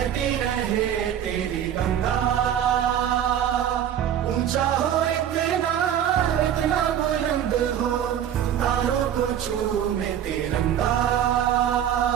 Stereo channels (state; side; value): quieter; left; 10.0 dB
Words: बहती रहे तेरी गंगा, ऊंचा हो इतना इतना बुलंद हो, तारों को चूमे तिरंगा।